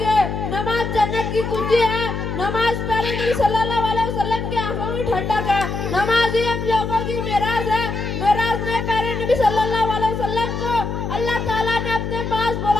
नमाज जन्नत की कुंजी है। नमाज प्यारे नबी सल्लल्लाहु अलैहि वसल्लम की आंखों में ठंडक है। नमाज ही हम लोगों की मेराज है। मेराज ने प्यारे नबी सल्लल्लाहु अलैहि वसल्लम को अल्लाह ताला ने अपने पास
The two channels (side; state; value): left; noise; hum, 4 dB below the sound